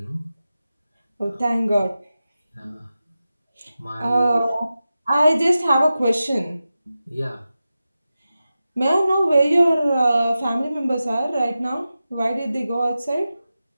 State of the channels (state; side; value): inverted; both; correlation -0.93